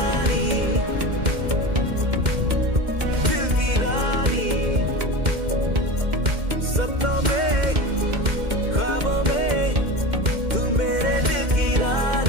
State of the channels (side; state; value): left; late; 2.1 ms